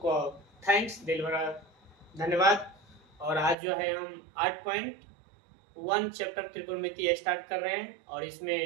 थैंक्स दिल भरा धन्यवाद। और आज जो है हम 8.1 चैप्टर त्रिकोणमिति स्टार्ट कर रहे हैं और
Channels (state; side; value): drops out; left; at 3.6 s